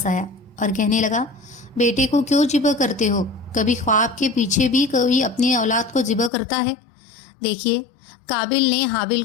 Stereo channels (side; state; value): right; drops out; at 6.3 s